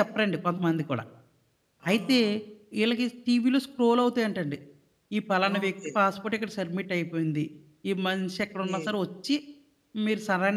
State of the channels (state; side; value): identical; both; correlation 1.00